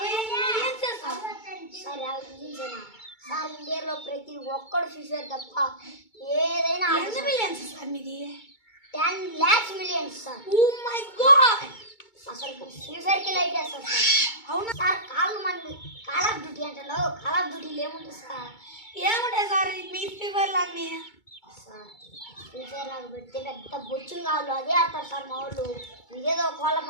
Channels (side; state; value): right; late; 2.2 ms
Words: మిలియన్స్ సార్. సార్ 50 మిలియన్సేనా సార్? ఇండియాలో ప్రతి ఒక్కడు ఫ్యూచర్ తప్ప ఏదైనా. ఎంత మిలియన్స్ సార్ మీది? 10 lakhs millions sir. Oh my God. అసలు ఫ్యూచర్కి లైట్ వేస్తారు సార్. అవునా సార్? కాల్ ఆఫ్ డ్యూటీ అంటారు. కాల్ ఆఫ్ డ్యూటీలు ఏముంటుంది సార్? ఏముంటాయి సార్ మీ ఫీవర్లు అన్నీ? సార్ ఫ్యూచర్ నాకు పెడితే పెద్ద బొచ్చులు కావాలి, అదే ఆడతారు సార్ మా వాళ్ళు. మీరేదో